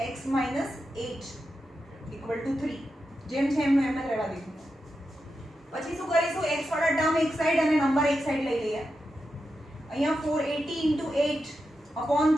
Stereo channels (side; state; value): both; normal; correlation 0.88